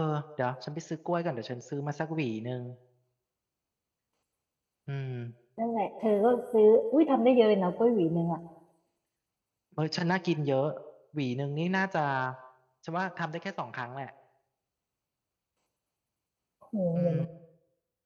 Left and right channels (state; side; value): identical; both; correlation 1.00